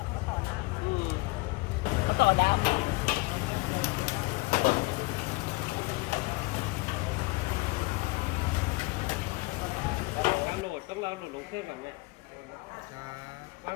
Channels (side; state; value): right; quieter; 24.0 dB